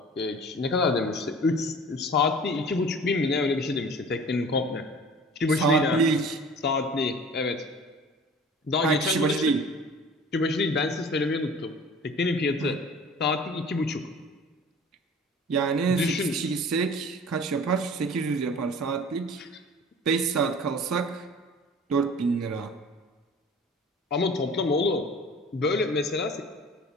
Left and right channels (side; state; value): both; normal; correlation 0.44